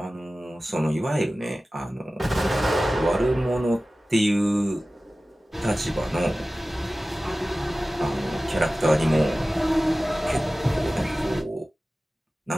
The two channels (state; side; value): normal; both; correlation 0.96